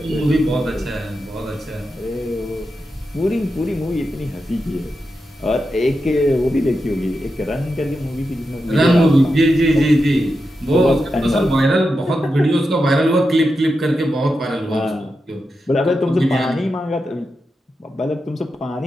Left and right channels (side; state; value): both; normal; correlation 0.88